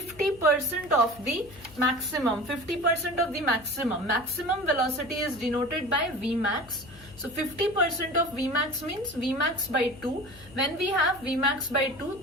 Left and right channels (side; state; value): left; noise; hum, 21 dB below the sound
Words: of the maximum. 50% of the maximum. Maximum velocity is denoted by Vmax. So 50% of Vmax means Vmax by 2. When we have Vmax by 2,